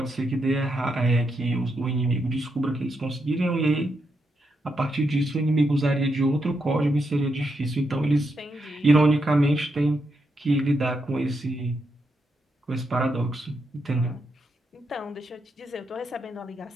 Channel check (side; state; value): both; normal; correlation 0.82